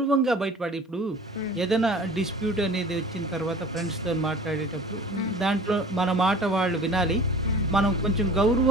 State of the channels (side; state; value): both; normal; correlation 0.43